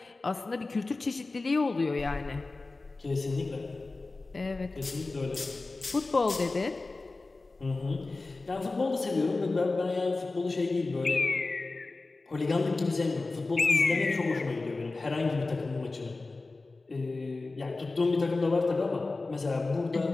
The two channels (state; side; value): quieter; right; 3.5 dB